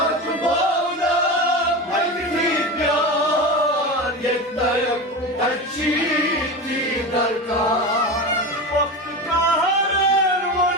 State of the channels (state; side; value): normal; both; correlation 0.25